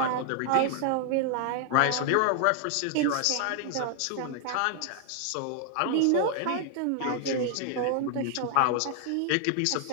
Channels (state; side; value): different; both; correlation 0.00